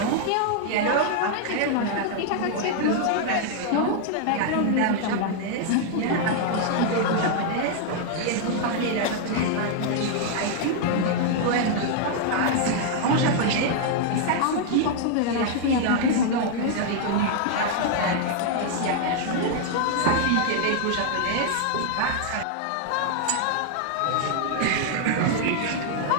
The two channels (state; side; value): different; both; correlation 0.00